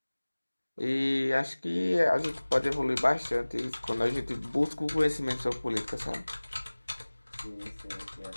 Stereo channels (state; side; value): inverted; both; correlation -1.00